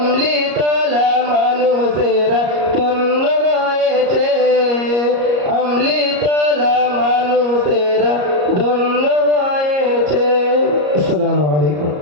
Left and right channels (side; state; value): left; late; 34 ms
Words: তলা মানুষেরা ধন্য হয়েছে আমলি তলা মানুষেরা ধন্য হয়েছে। আসসালামু আলাইকুম।